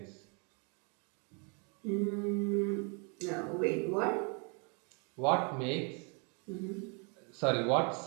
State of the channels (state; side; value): quieter; left; 35.3 dB